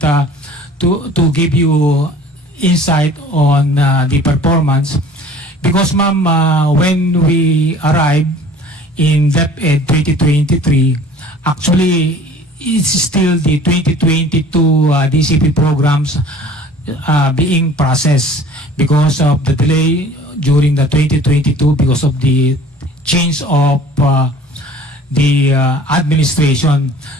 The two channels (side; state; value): both; normal; correlation 0.48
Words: to give you insight on the performance, because ma'am, when we arrived in DepEd 2023, actually it's still the 2022 DCP programs being processed because of the delay during the 2022 because of the change of the administration.